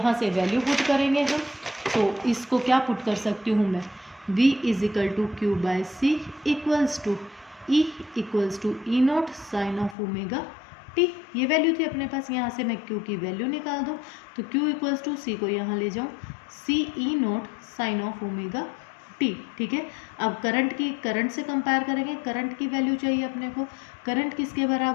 से वैल्यू पुट करेंगे हम, तो इसको क्या पुट कर सकती हूँ मैं, V is equal to Q by C equals to E equals to E naught sine of omega t. ये वैल्यू थी अपने पास। यहाँ से मैं Q की वैल्यू निकाल दूँ तो Q इक्वल्स टू C को यहाँ ले जाऊँ, C E naught sine of omega t. ठीक है, अब करंट से कंपेयर करेंगे, करंट की वैल्यू चाहिए अपने को। करंट किसके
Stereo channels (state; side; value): drops out; right; at 10.0 s